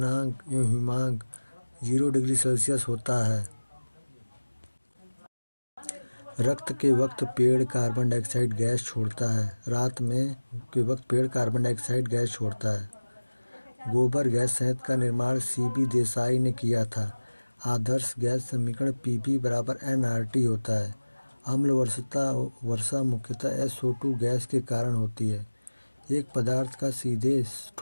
एवं हिमांक 0 डिग्री सेल्सियस होता है। रक्त के वक्त पेड़ कार्बन डाइऑक्साइड गैस छोड़ता है। रात में के वक्त पेड़ कार्बन डाइऑक्साइड गैस छोड़ता है। गोबर गैस संयंत्र का निर्माण CB देसाई ने किया था। आदर्श गैस समीकरण Pv बराबर nRT होता है। अम्ल वर्षा मुख्यतः SO2 गैस के कारण होती है। एक पदार्थ का सीधे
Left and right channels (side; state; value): both; inverted; correlation -1.00